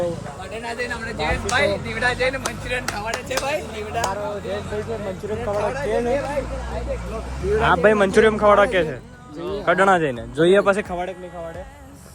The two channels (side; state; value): both; identical; correlation 1.00